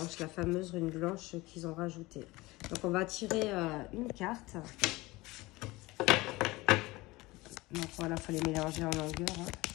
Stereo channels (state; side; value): quieter; right; 21.0 dB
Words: la fameuse rune blanche qu'ils ont rajoutée. Donc, on va tirer une carte. Donc, voilà, il faut les mélanger en longueur. Hein.